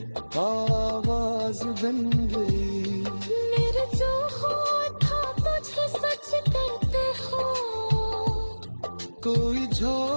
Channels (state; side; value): inverted; both; correlation -1.00